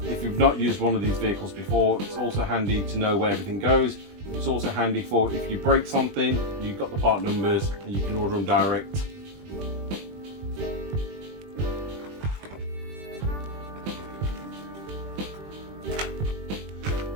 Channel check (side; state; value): left; late; 20 ms